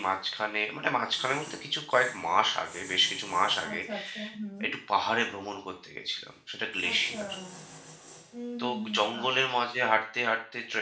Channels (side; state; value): both; identical; correlation 1.00